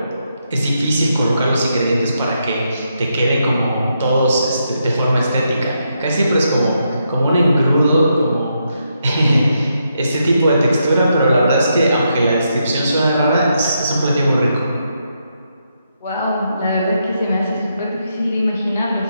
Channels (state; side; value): inverted; both; correlation -0.81